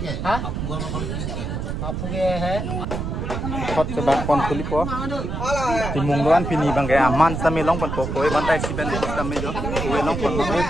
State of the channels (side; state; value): right; noise; rumble, 4 dB below the sound